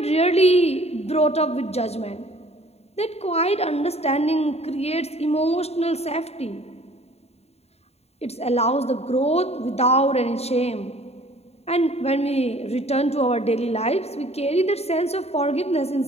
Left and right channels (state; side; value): late; right; 0.30 ms